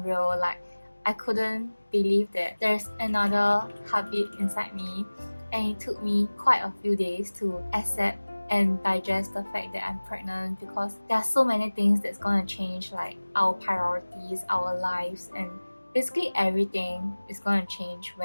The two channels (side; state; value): both; inverted; correlation -1.00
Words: Like, I couldn't believe that there's another heartbeat inside me, and it took me quite a few days to accept and digest the fact that I'm pregnant, because there are so many things that's gonna change, like our priorities, our lives, and basically everything is gonna change